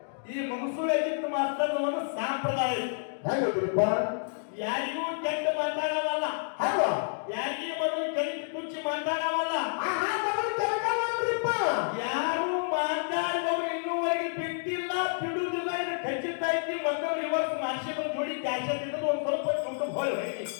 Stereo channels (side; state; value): right; silent; digital silence